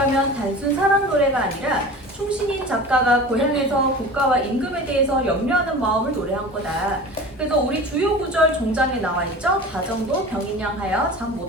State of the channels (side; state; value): both; normal; correlation 0.36